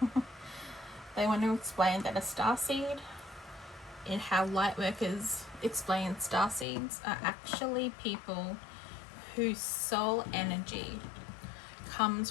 they want to explain that a starseed, in how lightworkers explain starseeds, are actually people whose soul energy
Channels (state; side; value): drops out; right; at 6.7 s